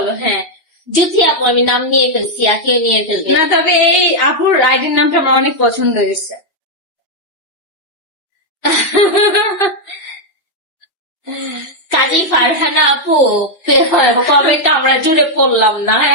হ্যাঁ জ্যোতি আপু আমি নাম নিয়ে ফেলছি, আখিও নিয়ে ফেলবে। না, তবে এই আপুর আইডির নামটা আমার অনেক পছন্দ হয়েছে। কাজী ফারহানা আপু কমেন্ট আমরা জুড়ে পড়লাম না।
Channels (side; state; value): right; late; 2.6 ms